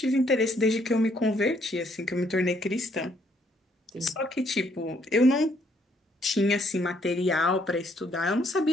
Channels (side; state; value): both; normal; correlation 0.69